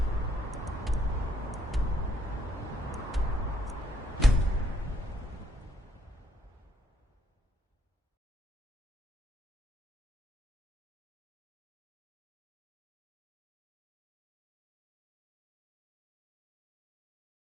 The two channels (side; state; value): both; normal; correlation 0.71